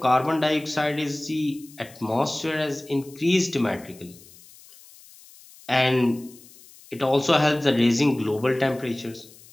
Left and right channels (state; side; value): noise; left; hiss, 23 dB below the sound